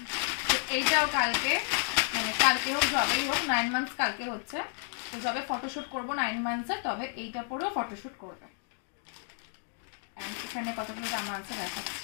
এইটাও কালকে, মানে কালকে হোক যবেই হোক, 9 মান্থস কালকে হচ্ছে, তো যবে ফটোশুট করবো 9 মান্থসের, তবে এইটা পরেও ফটোশুট করবে। এখানে কতগুলো জামা আছে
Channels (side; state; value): right; silent; 57 dB below the other